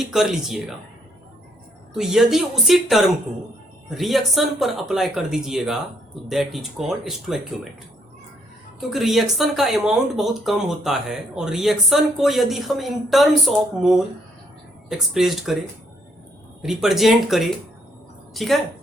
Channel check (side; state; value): both; normal; correlation 0.70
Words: कर लीजिएगा तो यदि उसी टर्म को रिएक्शन पर अप्लाई कर दीजिएगा तो दैट इज कॉल्ड स्टोइकियोमेट्री। क्योंकि रिएक्शन का अमाउंट बहुत कम होता है और रिएक्शन को यदि हम इन टर्म्स ऑफ मोल एक्सप्रेस्ड करें, रिप्रेजेंट करें, ठीक है,